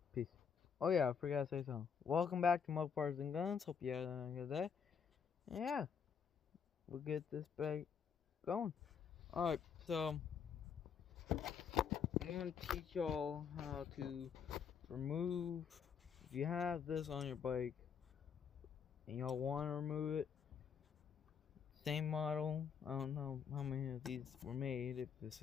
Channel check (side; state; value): right; quieter; 6.9 dB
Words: peace. Oh yeah, I forgot to say something. Welcome back to Mopars and Guns. Hope you had a good day. And yeah, we'll get this bag going. Alright, so I'm gonna teach y'all how to remove. If you have this on your bike and y'all want to remove it, same model. I don't know how many of these were made, if this